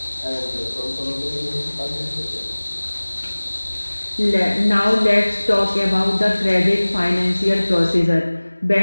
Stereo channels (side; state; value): both; inverted; correlation -1.00